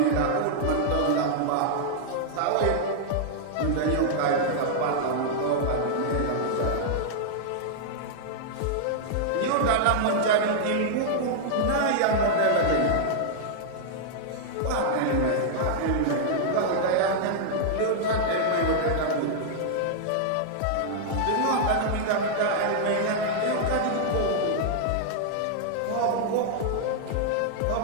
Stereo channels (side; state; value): both; different; correlation -0.01